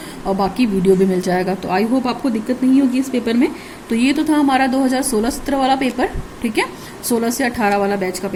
और बाकी वीडियो भी मिल जाएगा। तो आई होप आपको दिक्कत नहीं होगी इस पेपर में। तो ये तो था हमारा 2016-17 वाला पेपर, ठीक है, 16 से 18 वाला बैच का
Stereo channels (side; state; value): both; identical; correlation 1.00